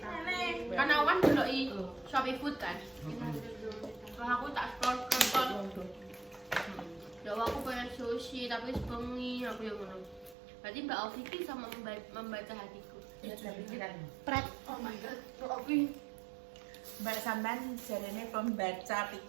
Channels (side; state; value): left; drops out; at 10.4 s